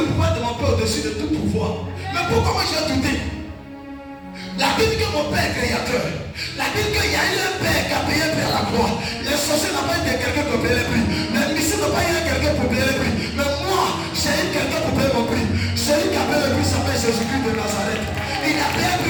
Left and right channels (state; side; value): identical; both; correlation 1.00